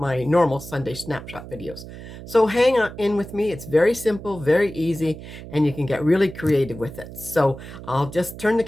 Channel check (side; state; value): right; noise; hum, 13 dB below the sound